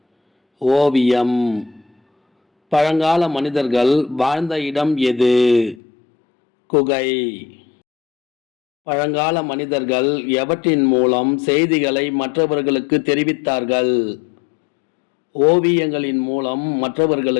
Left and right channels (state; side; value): drops out; right; at 5.8 s